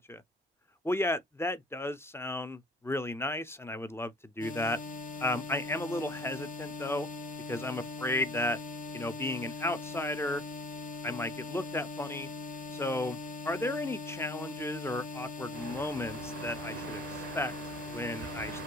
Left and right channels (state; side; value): normal; both; correlation 0.51